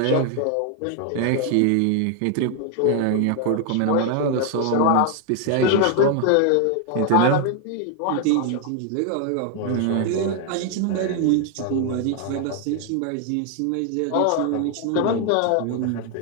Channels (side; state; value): both; different; correlation 0.00